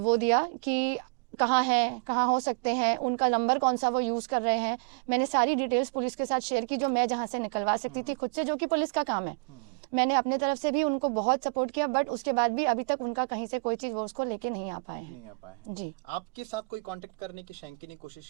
दिया कि कहाँ हैं, कहाँ हो सकते हैं, उनका नंबर कौन सा वो यूज़ कर रहे हैं। मैंने सारी डिटेल्स पुलिस के साथ शेयर की जो मैं जहाँ से निकलवा सकती थी खुद से, जो कि पुलिस का काम है। मैंने अपने तरफ से भी उनको बहुत सपोर्ट किया, बट उसके बाद भी अभी तक उनका कहीं से कोई चीज़ वो उसको लेके नहीं आ पाए हैं। जी। आपके साथ कोई कांटेक्ट करने की शैंकी ने कोशिश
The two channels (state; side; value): quieter; left; 35.7 dB